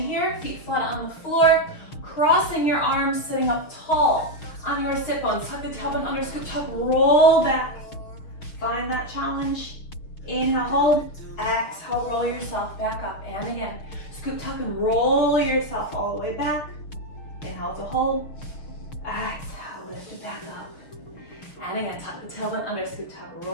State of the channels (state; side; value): late; right; 6.1 ms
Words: feet flat on the floor, crossing your arms, sitting up tall on your sit bones. Tuck the tailbone under, scoop, tuck, roll back. Find that challenge. Inhale, hold. Exhale, roll yourself back up. And again, scoop, tuck, and roll yourself all the way back. Inhale to hold. Exhale, lift it back up. And again, tuck the tailbone under, scoop, tuck,